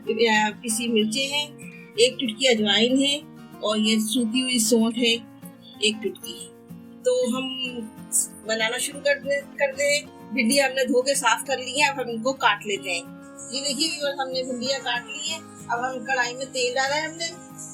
पिसी मिर्चें हैं, 1 चुटकी अजवाइन है और ये सूखी हुई सौंठ है 1 चुटकी। तो हम बनाना शुरू कर दे। भिंडी हमने धो के साफ कर ली है, अब हम इनको काट लेते हैं। ये देखिए व्यूअर, हमने भिंडियाँ काट ली है। अब हम कढ़ाई में तेल डाला है हमने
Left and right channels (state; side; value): identical; both; correlation 1.00